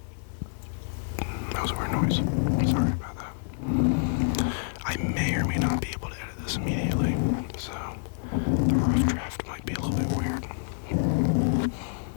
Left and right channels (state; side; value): silent; right; digital silence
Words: That was a weird noise. Sorry about that. I may or may not be able to edit this immediately, so the rough draft might be a little bit weird.